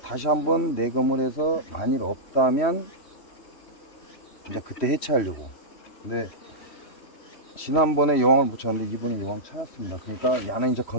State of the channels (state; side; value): late; right; 3.1 ms